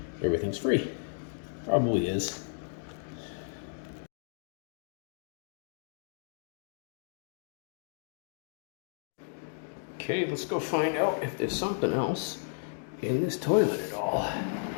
everything's free. Probably is. Okay, let's go find out if there's something else in this toilet at all.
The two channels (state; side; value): silent; right; digital silence